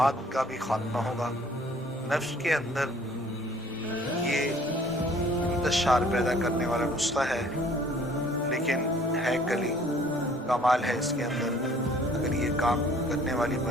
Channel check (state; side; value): normal; both; correlation 0.56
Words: का भी खात्मा होगा। नफ्स के अंदर ये इंतशार पैदा करने वाला नुस्खा है, लेकिन है कली, कमाल है इसके अंदर। अगर ये काम करने वाली